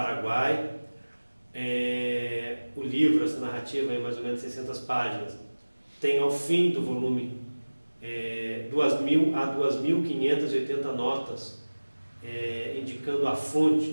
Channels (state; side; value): inverted; both; correlation -1.00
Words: O livro, essa narrativa, é mais ou menos 600 páginas. Tem ao fim do volume 2.000 a 2.580 notas, indicando a